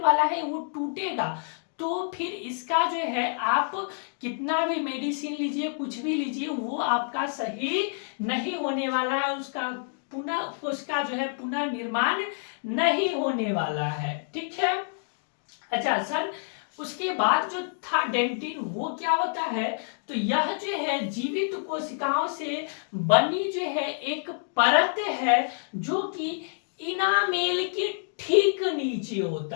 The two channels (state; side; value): silent; right; digital silence